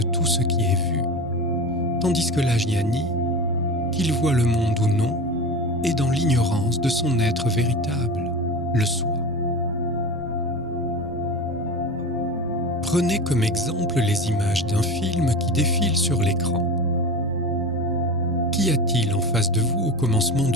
tout ce qui est vu, tandis que l'ajnani, qu'il voit le monde ou non, est dans l'ignorance de son être véritable, le soi. Prenez comme exemple les images d'un film qui défile sur l'écran. Qu'y a-t-il en face de vous au commencement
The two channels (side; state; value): both; normal; correlation 0.29